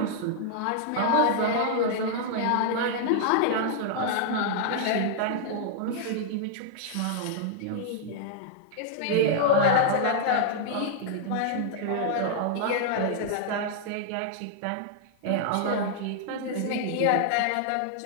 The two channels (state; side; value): different; both; correlation -0.01